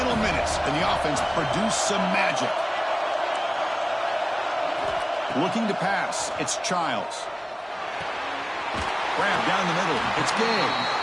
minutes, and the offense produced some magic. Looking to pass, it's Childs. Grab down the middle, it's Gay.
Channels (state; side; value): identical; both; correlation 1.00